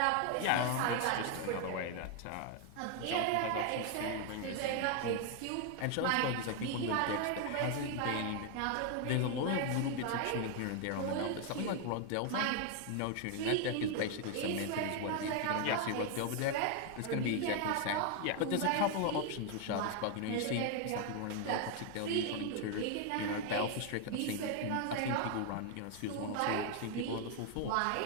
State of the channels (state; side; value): different; both; correlation 0.00